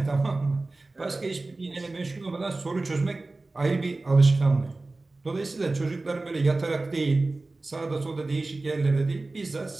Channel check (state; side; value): quieter; left; 3.2 dB